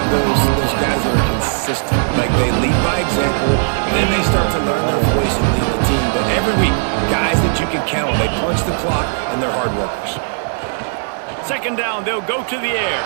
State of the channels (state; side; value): silent; left; digital silence